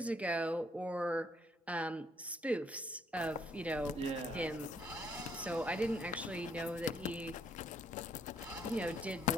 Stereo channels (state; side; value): normal; both; correlation 0.69